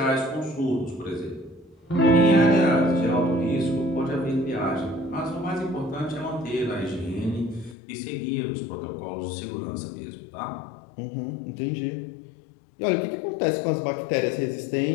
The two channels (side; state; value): right; drops out; at 7.8 s